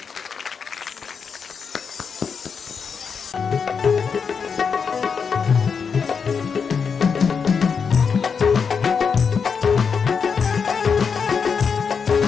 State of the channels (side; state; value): right; quieter; 6.0 dB